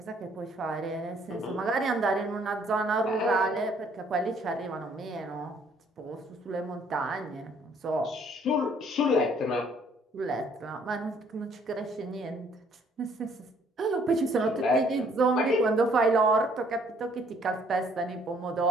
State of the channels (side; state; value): both; normal; correlation 0.63